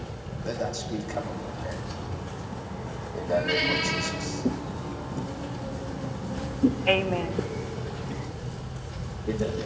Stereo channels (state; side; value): identical; both; correlation 1.00